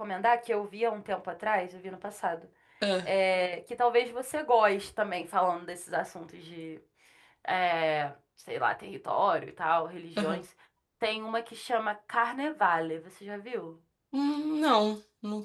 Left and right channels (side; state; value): both; identical; correlation 1.00